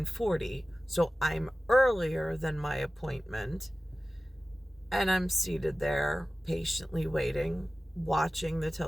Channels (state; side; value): normal; both; correlation 0.96